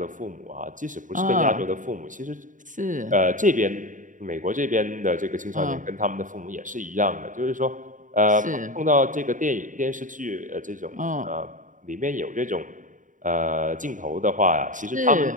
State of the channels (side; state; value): left; late; 0.38 ms